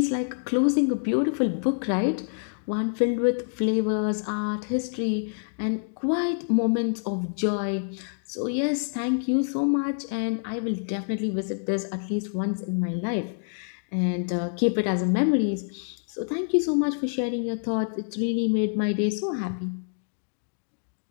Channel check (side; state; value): right; silent; digital silence